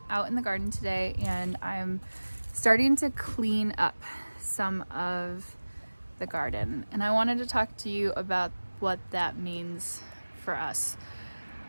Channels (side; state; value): both; inverted; correlation -1.00